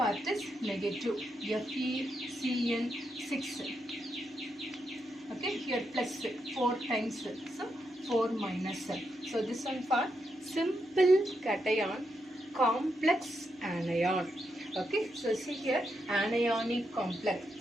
is negative, FeCN6. Okay, here plus 4 times, so 4 minus. So this one for simple cation, complex anion. Okay, so see here anionic complex.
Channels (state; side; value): normal; both; correlation 0.82